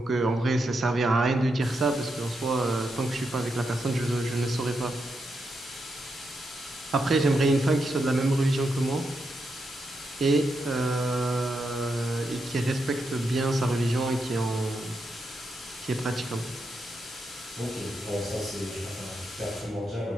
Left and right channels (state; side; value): normal; both; correlation 0.84